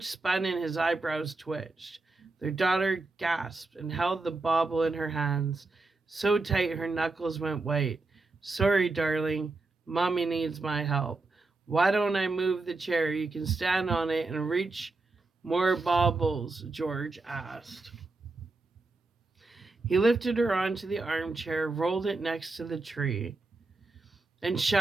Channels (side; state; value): left; quieter; 3.4 dB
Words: spun and his eyebrows twitched. Their daughter gasped and held the bauble in her hands, so tight her knuckles went white. Sorry, darling. Mommy needs my help. Why don't I move the chair? You can stand on it and reach more baubles, George asked. He lifted her onto the armchair, rolled it next to the tree, and